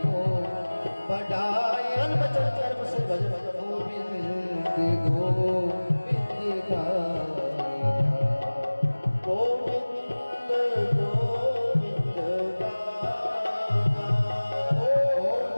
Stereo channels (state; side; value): inverted; both; correlation -1.00